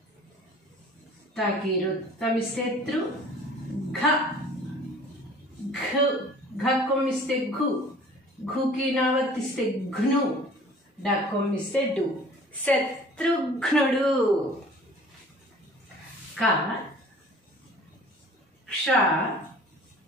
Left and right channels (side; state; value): both; normal; correlation 0.48